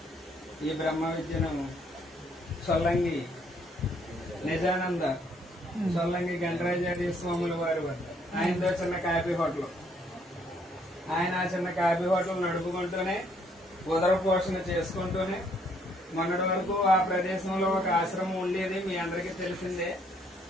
ఈ బ్రహ్మ విద్యను సొల్లంగి నిజానంద సొల్లంగి గణరాజార్య స్వాముల వారి వద్ద ఆయనతో చిన్న కాఫీ హోటల్, ఆయన ఆ చిన్న కాఫీ హోటల్ నడుపుకుంటూనే ఉదర పోషణ చేసుకుంటూనే మొన్నటి వరకు ఆ ప్రదేశంలో ఒక ఆశ్రమం ఉండేది, మీ అందరికీ తెలిసిందే.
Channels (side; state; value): both; normal; correlation 0.67